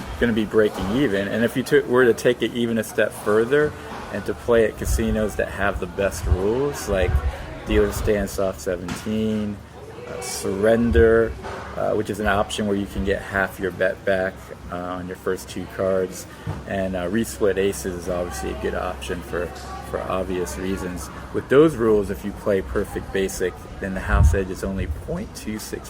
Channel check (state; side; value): identical; both; correlation 1.00